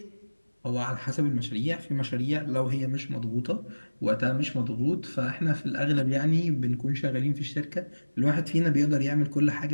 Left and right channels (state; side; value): inverted; both; correlation -1.00